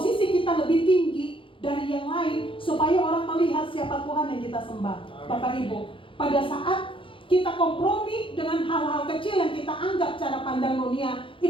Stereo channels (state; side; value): late; right; 0.25 ms